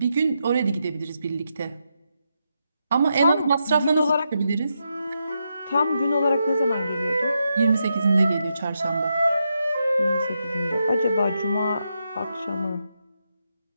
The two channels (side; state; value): both; inverted; correlation -0.84